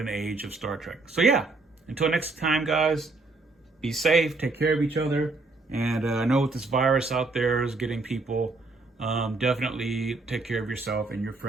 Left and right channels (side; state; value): left; quieter; 3.4 dB